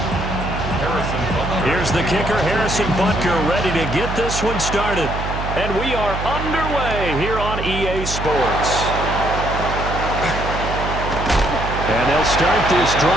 Here's the kicker, Harrison Butker, ready to get this one started. And we are underway here on EA Sports. And they'll start this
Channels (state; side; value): noise; right; hum, 5 dB below the sound